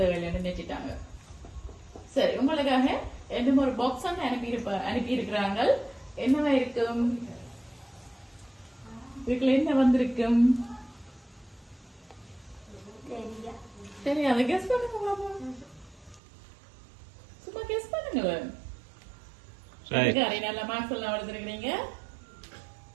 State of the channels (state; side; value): drops out; left; at 16.2 s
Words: நினைச்சிட்டாங்க. சரி, உங்களுக்காக இன்னும் ஒரு பாக்ஸ் அனுப்பி இருக்கிறாங்க. என்னவா இருக்கும்? இதுக்குள்ள என்ன வந்திருக்கும்? தெரியா சரி, அதை கெஸ் பண்ணுங்க பாப்போம். சும்மா கெஸ் பண்ணுங்க. சரி, நல்ல மார்க்ஸ் எல்லாம் எடுத்துருக்கீங்க.